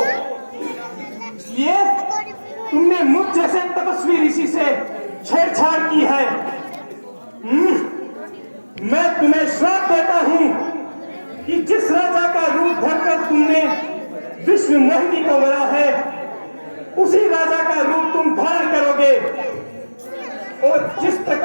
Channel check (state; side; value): inverted; both; correlation -1.00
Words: इसलिए तुमने मुझ जैसे तपस्वी ऋषि से छेड़छाड़ की है। मैं तुम्हें श्राप देता हूं कि जिस राजा का रूप धरकर तुमने विश्व मोहिनी को मरा है, उसी राजा का रूप तुम धारण करोगे। और जिस